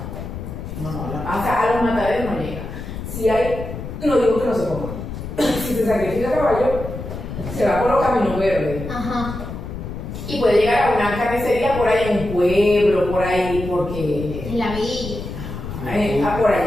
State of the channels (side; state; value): left; noise; rumble, 8 dB below the sound